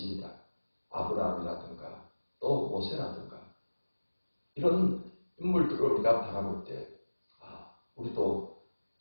아브라함이라든가 또 모세라든가 이런 인물들을 우리가 바라볼 때 우리도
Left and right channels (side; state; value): both; inverted; correlation -1.00